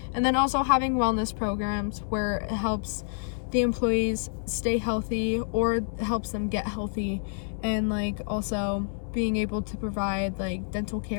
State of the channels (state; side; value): silent; right; 59 dB below the other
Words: And then also having wellness programs where it helps the employees stay healthy or helps them get healthy, and like also being able to provide like dental